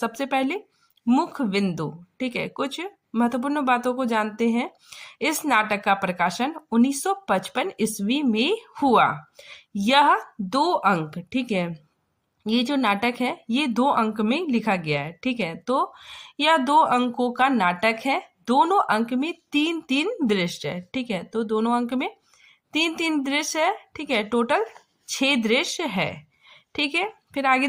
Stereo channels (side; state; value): both; identical; correlation 1.00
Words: पहले मुख्य बिंदु। ठीक है, कुछ महत्वपूर्ण बातों को जानते हैं। इस नाटक का प्रकाशन 1955 ईस्वी में हुआ। यह 2 अंक, ठीक है, ये जो नाटक है ये 2 अंक में लिखा गया है। ठीक है, तो यह 2 अंकों का नाटक है। दोनों अंक में 3-3 दृश्य है। ठीक है, तो दोनों अंक में 3-3 दृश्य है। ठीक है, टोटल 6 दृश्य है। ठीक है, फिर आगे